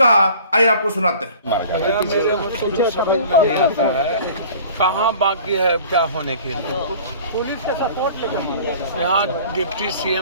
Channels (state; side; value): inverted; both; correlation -0.46